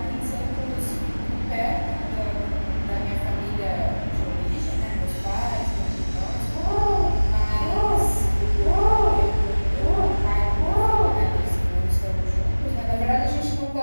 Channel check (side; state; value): both; inverted; correlation -1.00